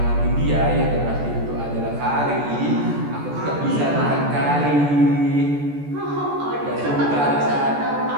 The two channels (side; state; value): left; late; 14 ms